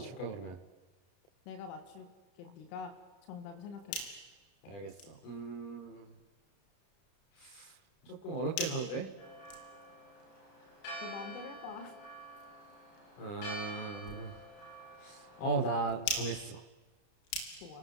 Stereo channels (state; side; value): late; right; 32 ms